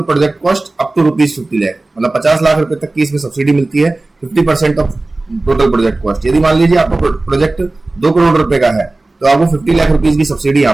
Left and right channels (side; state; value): left; quieter; 3.0 dB